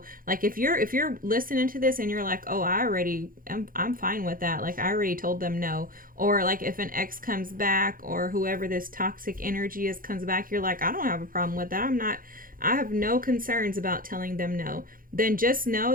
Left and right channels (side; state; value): left; late; 0.41 ms